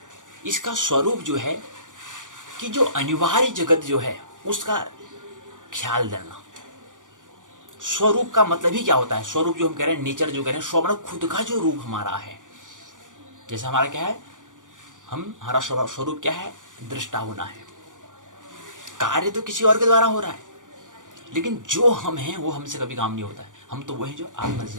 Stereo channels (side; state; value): left; late; 0.87 ms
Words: इसका स्वरूप जो है कि जो अनिवार्य जगत जो है उसका ख्याल देना। स्वरूप का मतलब ही क्या होता है? स्वरूप जो हम कह रहे हैं, नेचर जो कह रहे हैं, स्व मतलब खुद का जो रूप हमारा है। जैसे हमारा क्या है, हमारा स्वरूप क्या है? दृष्टा होना है। कार्य तो किसी और के द्वारा हो रहा है, लेकिन जो हम हैं वो हमसे कभी काम नहीं होता है। हम तो वही जो आत्मा से